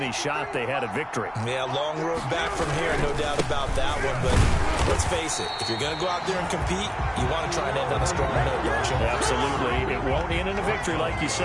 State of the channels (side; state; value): both; identical; correlation 1.00